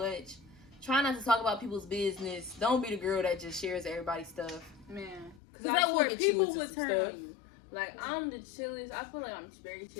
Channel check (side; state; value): right; drops out; at 5.4 s